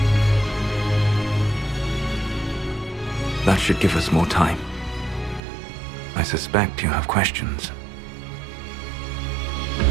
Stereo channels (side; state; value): left; drops out; at 5.4 s